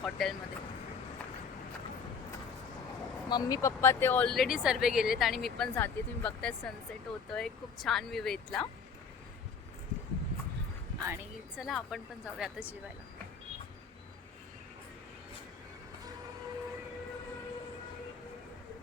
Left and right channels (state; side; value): quieter; right; 5.7 dB